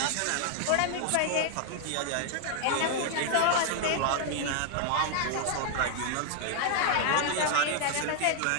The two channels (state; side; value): different; both; correlation 0.00